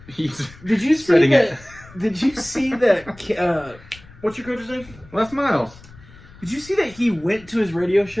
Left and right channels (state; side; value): noise; left; rumble, 22 dB below the sound